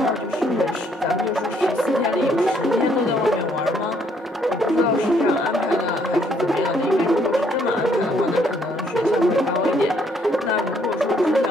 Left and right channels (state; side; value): normal; both; correlation 0.68